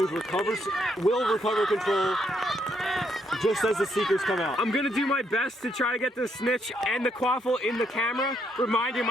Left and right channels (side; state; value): both; normal; correlation 0.75